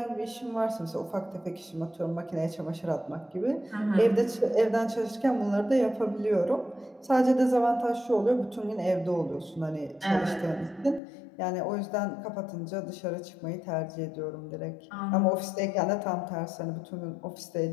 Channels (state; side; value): drops out; right; at 11.0 s